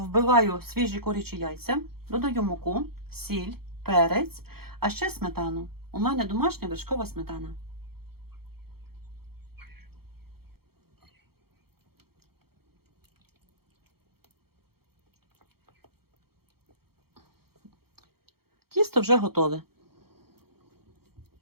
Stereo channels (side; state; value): left; late; 0.95 ms